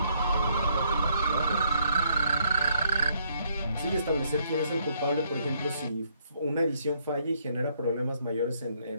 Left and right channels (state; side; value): inverted; both; correlation -0.70